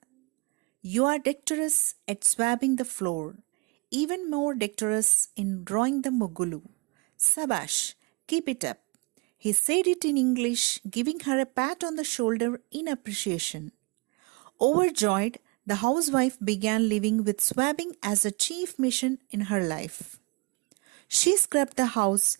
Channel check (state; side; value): quieter; left; 27.1 dB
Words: "You are dexterous at swabbing the floor, even more dexterous in drawing the mugulu. Sabash, keep it up." He said it in English, giving her a pat on the shoulder in appreciation. Overjoyed, the housewife began living with swabbing as a chief mission in her life. She scrubbed the house